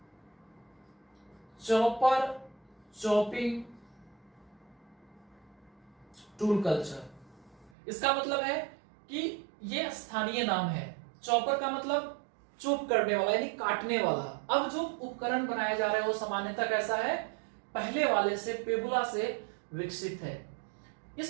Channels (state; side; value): drops out; left; at 7.7 s